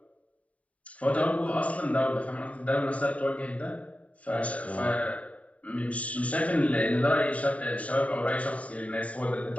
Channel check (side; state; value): right; late; 0.067 ms